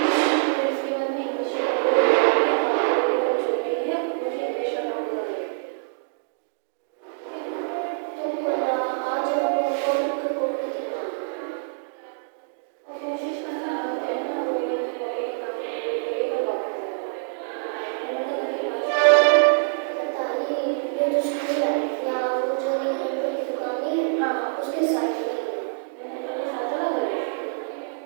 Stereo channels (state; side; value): silent; left; digital silence